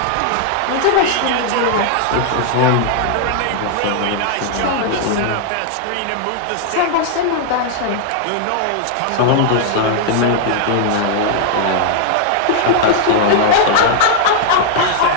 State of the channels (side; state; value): both; different; correlation -0.01